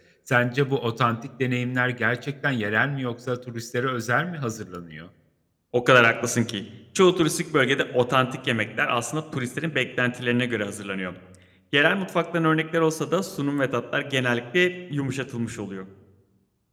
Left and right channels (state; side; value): identical; both; correlation 1.00